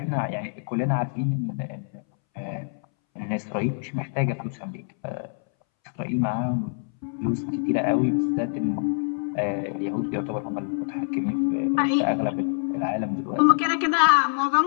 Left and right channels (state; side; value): silent; right; 61 dB below the other